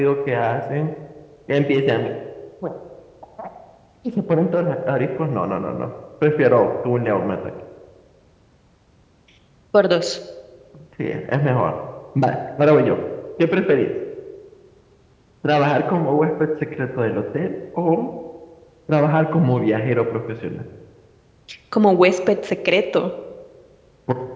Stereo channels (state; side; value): identical; both; correlation 1.00